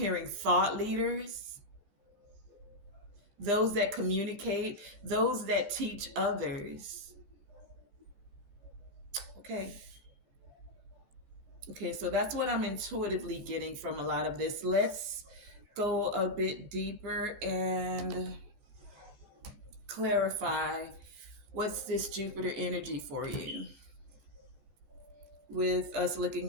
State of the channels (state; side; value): late; left; 14 ms